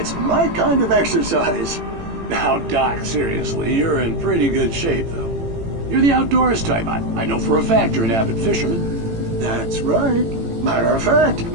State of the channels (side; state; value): left; late; 18 ms